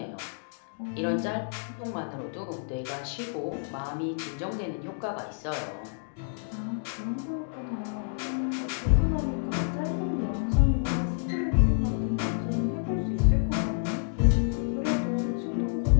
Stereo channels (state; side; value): silent; right; digital silence